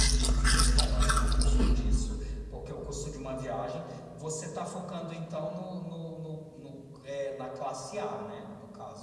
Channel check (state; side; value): identical; both; correlation 1.00